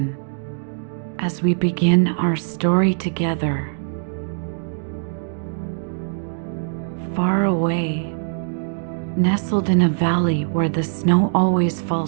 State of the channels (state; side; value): silent; left; digital silence